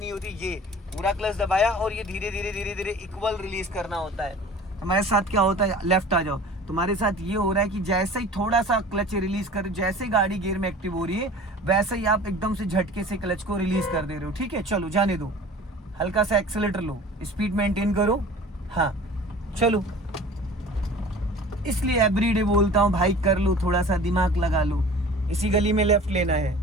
होती है, ये पूरा क्लच दबाया और ये धीरे धीरे धीरे धीरे इक्वल रिलीज करना होता है। हमारे साथ क्या होता है, लेफ्ट आ जाओ, तुम्हारे साथ ये हो रहा है कि जैसे ही थोड़ा सा क्लच रिलीज कर, जैसे ही गाड़ी गियर में एक्टिव हो रही है, वैसे ही आप एकदम से झटके से क्लच को रिलीज कर दे रहे हो। ठीक है, चलो जाने दो, हल्का सा एक्सीलेटर लो, स्पीड मेंटेन करो। हाँ चलो, इसलिए एवरीडे बोलता हूँ भाई, कर लो, थोड़ा सा दिमाग लगा लो। इसी गली में लेफ्ट लेना है,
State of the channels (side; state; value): both; normal; correlation 0.42